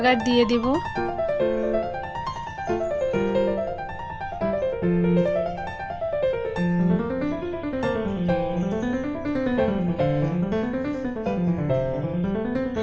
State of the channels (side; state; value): both; identical; correlation 1.00